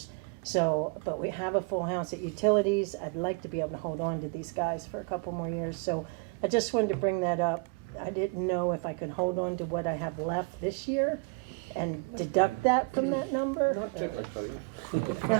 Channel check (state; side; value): quieter; left; 32.5 dB